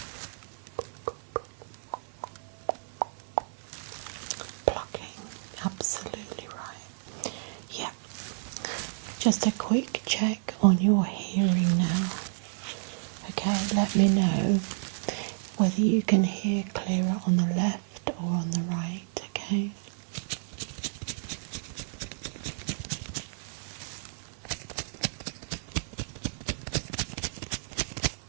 Plucking. Absolutely right. Yeah. Just a quick check on your hearing now. Okay, let me know whether you can hear clearer on the left or on the right, okay?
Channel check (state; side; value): silent; left; 57 dB below the other